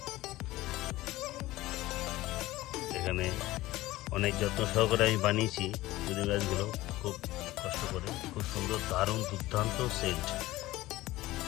এখানে অনেক যত্ন সহকারে আমি বানিয়েছি পুদিনা গাছগুলো, খুব কষ্ট করে। খুব সুন্দর, দারুণ, দুর্দান্ত সেন্ট,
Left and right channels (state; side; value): quieter; right; 17.5 dB